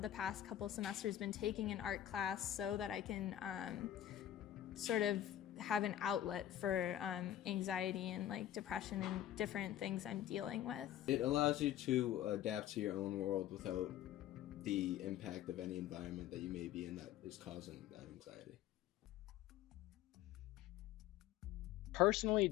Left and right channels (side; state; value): right; quieter; 12.1 dB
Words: the past couple semesters, been taking an art class so that I can sort of have an outlet for anxiety and like depression and different things I'm dealing with. It allows you to adapt to your own world without the impact of any environment that you may be in that is causing that anxiety. Personally